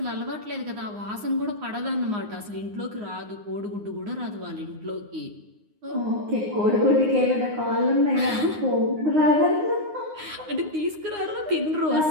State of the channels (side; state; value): left; late; 9.6 ms